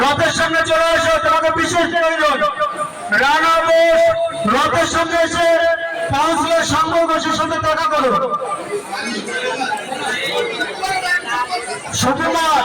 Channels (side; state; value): both; identical; correlation 1.00